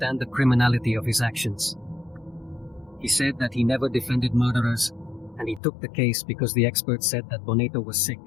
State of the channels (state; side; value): drops out; right; at 5.6 s